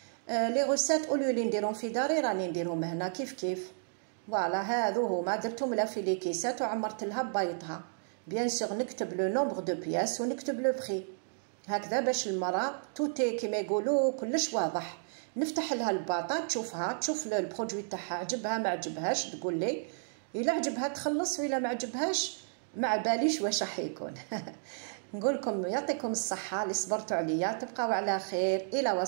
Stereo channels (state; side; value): silent; left; digital silence